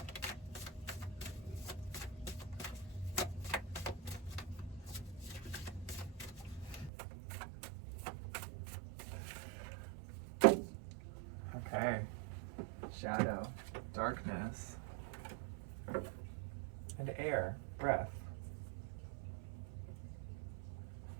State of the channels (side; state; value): left; drops out; at 6.9 s